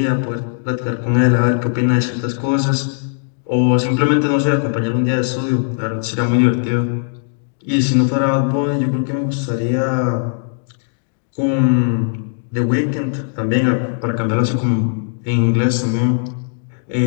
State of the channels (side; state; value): right; silent; digital silence